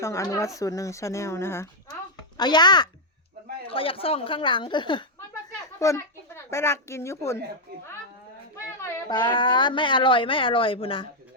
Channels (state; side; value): normal; both; correlation -0.02